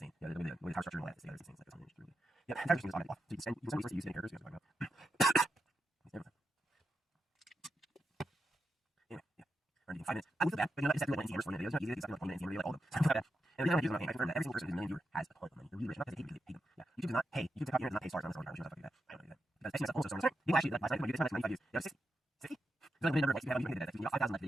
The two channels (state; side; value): normal; both; correlation 0.87